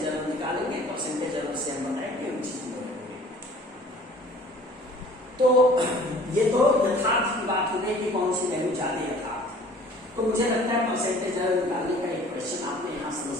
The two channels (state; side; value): normal; both; correlation 0.50